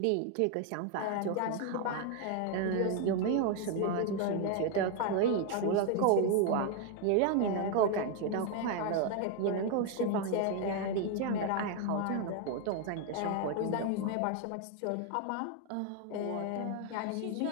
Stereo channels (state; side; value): different; both; correlation 0.00